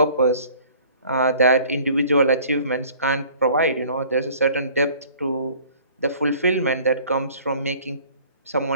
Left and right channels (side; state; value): both; inverted; correlation -0.52